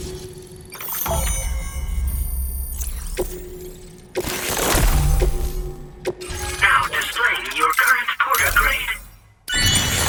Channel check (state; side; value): identical; both; correlation 1.00